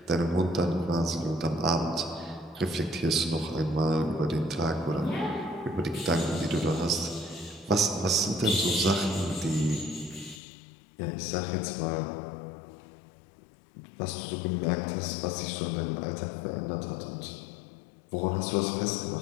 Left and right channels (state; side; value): drops out; right; at 10.4 s